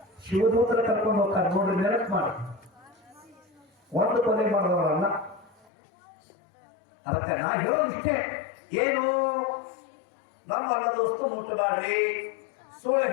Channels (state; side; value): drops out; right; at 5.7 s